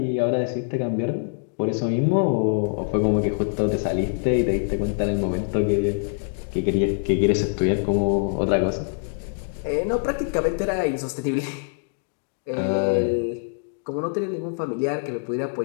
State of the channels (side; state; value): right; silent; digital silence